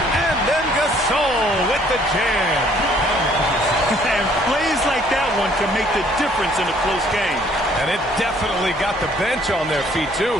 then Gasol with the jam. And plays like that one can make the difference in a close game. And it definitely got the bench on their feet,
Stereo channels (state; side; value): noise; left; hum, 19 dB below the sound